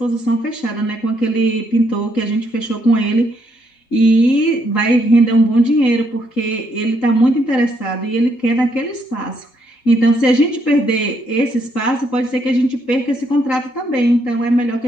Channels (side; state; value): right; late; 3.8 ms